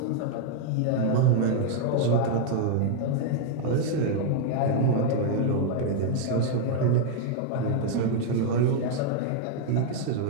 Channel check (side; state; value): both; different; correlation 0.00